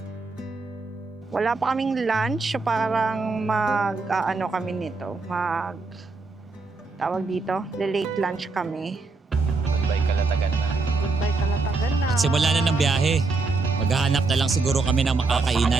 Wala pa kaming lunch, so parang kami nito. Tawag dito, late lunch kami. Goodbye Kalatagan na. Goodbye Kalatagan na. At simula na ng biyahe. Maghahanap na lang siguro kami ng Sa kanya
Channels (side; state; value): left; quieter; 3.9 dB